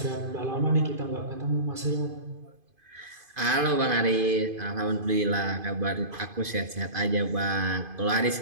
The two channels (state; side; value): late; left; 2.5 ms